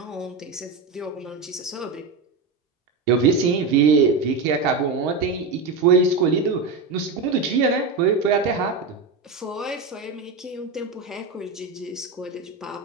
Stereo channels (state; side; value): quieter; left; 4.3 dB